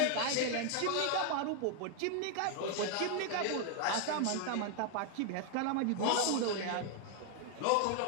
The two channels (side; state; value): both; different; correlation 0.00